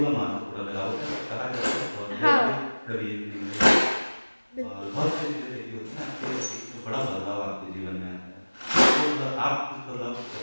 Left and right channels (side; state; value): both; inverted; correlation -1.00